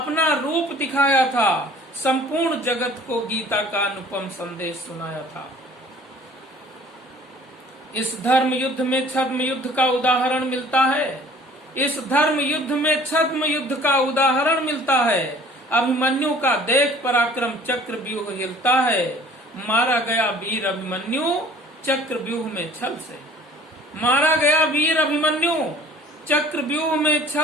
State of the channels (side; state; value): both; normal; correlation 0.51